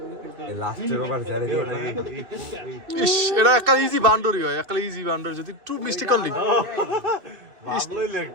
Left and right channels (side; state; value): left; late; 2.6 ms